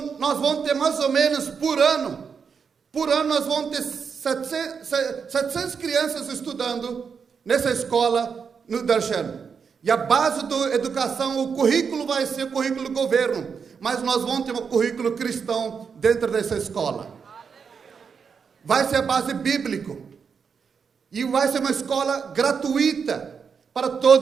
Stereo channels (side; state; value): left; quieter; 6.2 dB